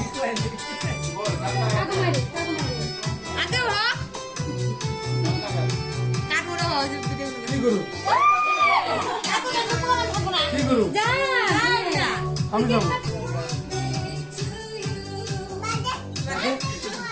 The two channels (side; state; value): both; identical; correlation 1.00